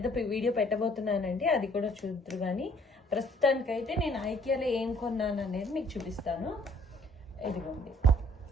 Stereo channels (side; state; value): both; normal; correlation 0.60